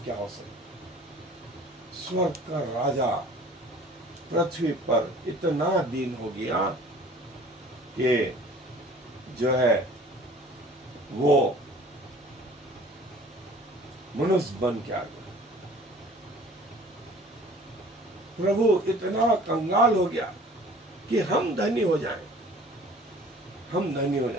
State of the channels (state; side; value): normal; both; correlation 0.49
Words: क्या हो सकती? स्वर्ग का राजा पृथ्वी पर इतना दीन हो गया कि जो है वो मनुष्य बन के आ गया। प्रभु इतना कंगाल हो गया कि हम धनी हो जाएं, हम धनी हो